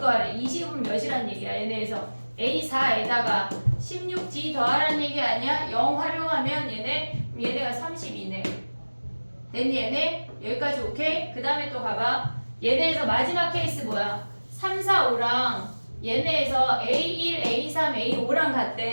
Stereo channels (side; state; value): both; inverted; correlation -1.00